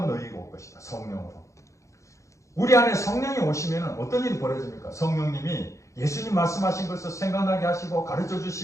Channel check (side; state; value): right; late; 0.15 ms